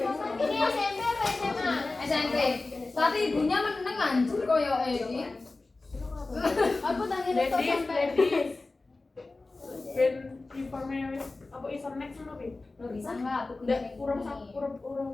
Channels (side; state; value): right; quieter; 3.4 dB